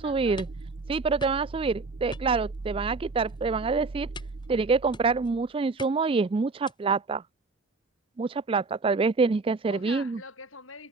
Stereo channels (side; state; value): left; quieter; 4.0 dB